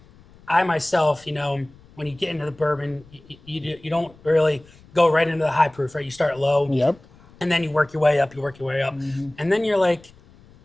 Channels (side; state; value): left; noise; rumble, 26 dB below the sound